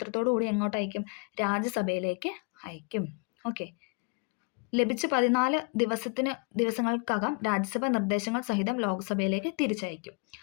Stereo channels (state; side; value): quieter; right; 33.9 dB